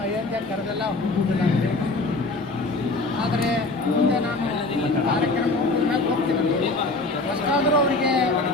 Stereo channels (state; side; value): quieter; right; 3.2 dB